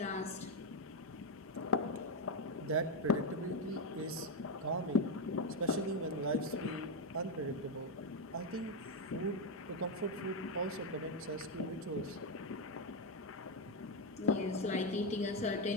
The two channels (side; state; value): both; normal; correlation 0.06